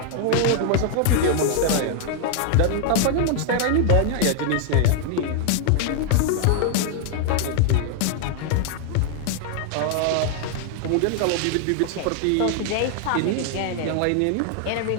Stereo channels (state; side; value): different; both; correlation 0.00